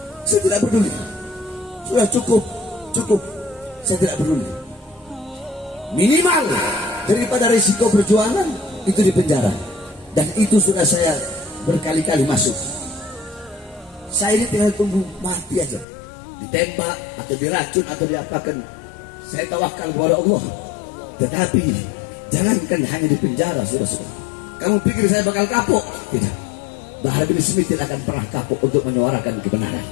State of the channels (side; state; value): right; drops out; at 15.9 s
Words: Saya tidak peduli. Sudah cukup. Saya tidak peduli. Minimal daripada risiko perjuangan itu di penjara. Dan itu sudah saya berkali-kali masuk. Saya ini tinggal tunggu mati aja, ditembak atau diracun atau diapakan. Saya tawakal kepada Allah. Tetapi jangankan hanya di penjara, saudara-saudara. Kamu pikir saya bakal kapok? Tidak. Bahar bin Smith tidak akan pernah kapok untuk menyuarakan kebenaran.